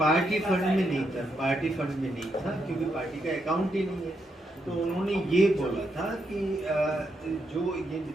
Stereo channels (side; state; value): both; normal; correlation 0.80